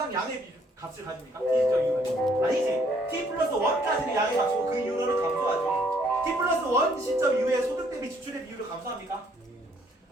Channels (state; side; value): normal; both; correlation 0.65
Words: 양의 값을 가집니까? T 시점 이후에 아니지. T 플러스 1까지는 양의 값이고 그 이후로는 감소하죠. T 플러스 1 시점 이후에 소득 대비 지출의 비율을 감소합니까?